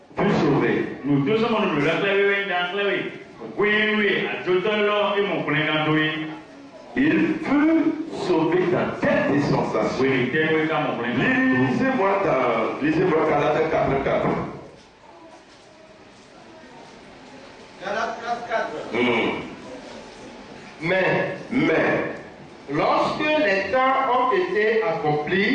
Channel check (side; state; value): both; identical; correlation 1.00